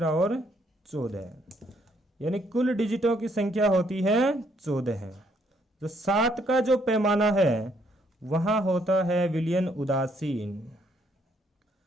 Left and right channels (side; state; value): both; normal; correlation 0.70